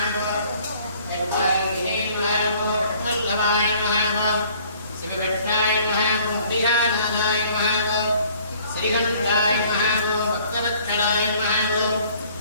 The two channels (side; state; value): both; inverted; correlation -0.57